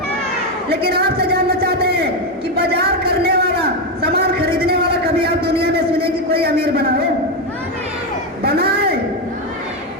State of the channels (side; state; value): both; normal; correlation 0.08